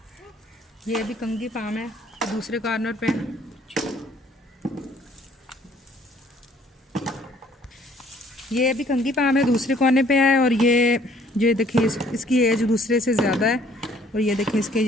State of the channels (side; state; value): both; normal; correlation 0.60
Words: ये भी कंगी पाम है, दूसरे कॉर्नर पे। ये भी कंगी पाम है, दूसरे कोने पे है। और ये देखिए इसकी एज दूसरे से ज़्यादा है। और ये देखिए इसके